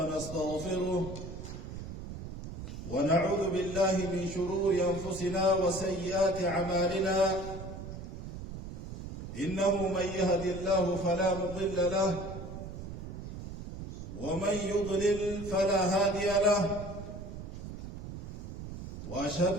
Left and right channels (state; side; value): noise; right; rumble, 9 dB below the sound